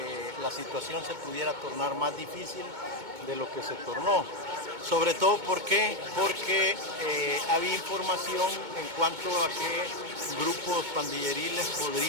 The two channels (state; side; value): late; left; 2.2 ms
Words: la situación se pudiera tornar más difícil de lo que se tornó. Sobre todo porque había información en cuanto a que grupos pandilleriles